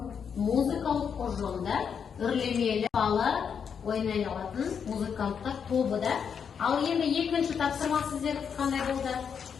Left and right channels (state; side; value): quieter; right; 7.0 dB